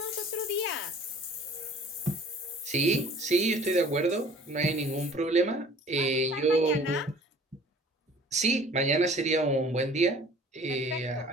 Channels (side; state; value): both; normal; correlation 0.50